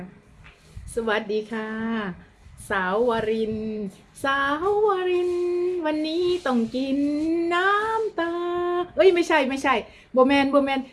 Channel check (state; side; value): identical; both; correlation 1.00